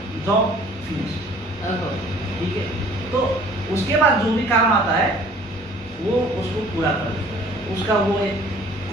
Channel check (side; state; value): both; normal; correlation 0.53